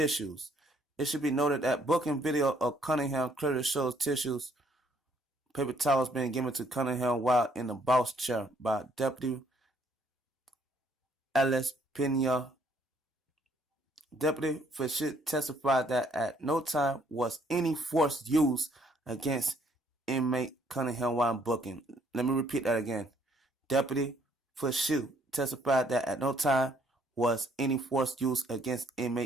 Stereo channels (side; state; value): both; normal; correlation 0.66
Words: It should be noted that booking video of Cunningham clearly shows paper towels being given to Cunningham while in the boss chair by Deputy Ellis Pena. Deputy Fisher testified that at no time was any force used against inmate Cunningham while booking. Let me repeat that again. Deputy Fisher testified that at no time was any force used against